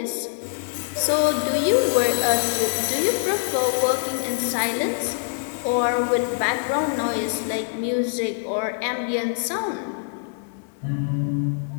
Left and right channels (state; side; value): silent; right; digital silence